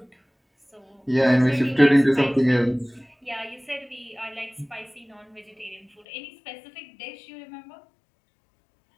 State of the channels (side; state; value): right; drops out; at 6.1 s